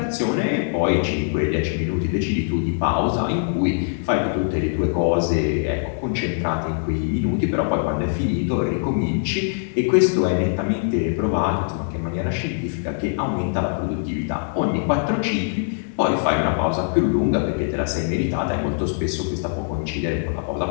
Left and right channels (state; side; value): silent; right; digital silence